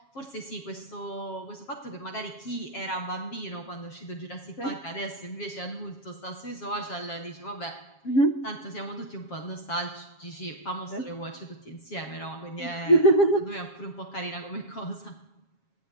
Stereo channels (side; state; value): right; late; 7.3 ms